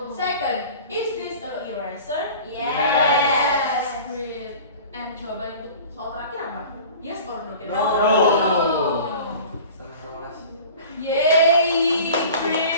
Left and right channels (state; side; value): inverted; both; correlation -0.41